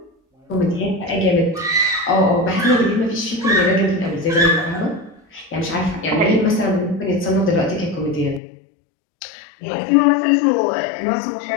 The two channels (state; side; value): drops out; right; at 8.4 s